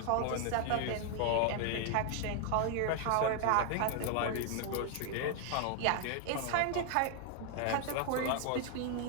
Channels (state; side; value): different; both; correlation 0.00